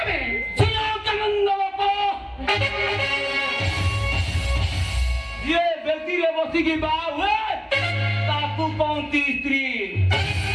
ବେ? ସୁନନ୍ଦ ବାପ ଯିଏ ବେଦିରେ ବସିକି ବାହା ହୁଏ ତାକୁ କହନ୍ତି ସ୍ତ୍ରୀ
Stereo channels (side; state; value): both; identical; correlation 1.00